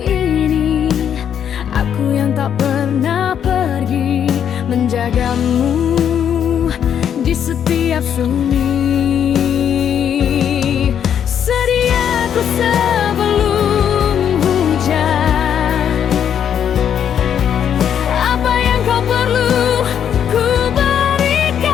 aku yang tak pernah pergi, menjagamu di setiap sunyi. Sedia ku sebelum hujan, apa yang kau perlu ku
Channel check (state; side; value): quieter; right; 8.8 dB